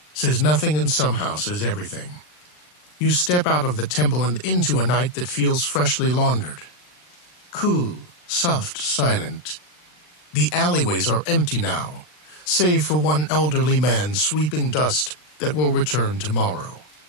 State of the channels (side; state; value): right; late; 39 ms